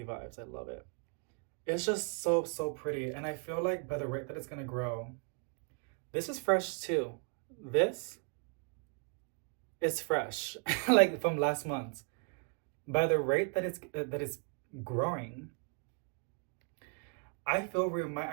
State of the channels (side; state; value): left; quieter; 37.7 dB